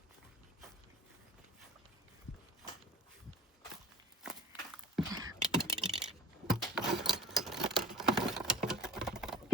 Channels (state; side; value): normal; both; correlation 0.42